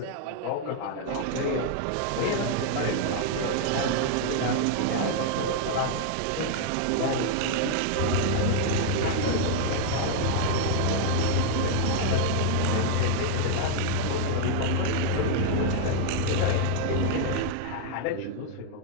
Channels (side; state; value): both; different; correlation -0.01